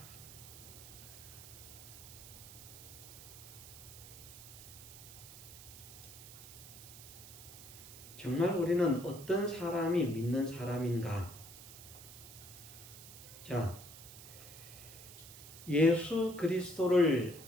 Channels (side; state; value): right; noise; hiss, 15 dB below the sound